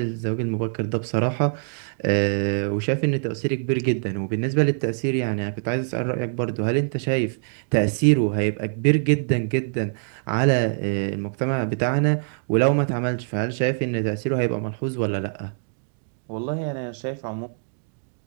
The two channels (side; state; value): left; silent; digital silence